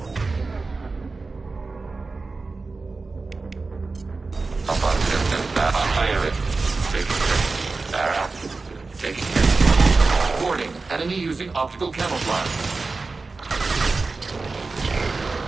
Up on 10 and back. Fire it. Taking it. Back. Taking it. Warning. Enemy using optical camouflage.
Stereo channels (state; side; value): quieter; left; 3.9 dB